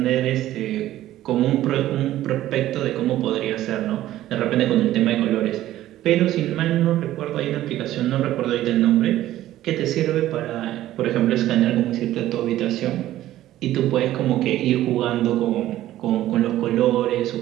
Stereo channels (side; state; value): left; quieter; 14.0 dB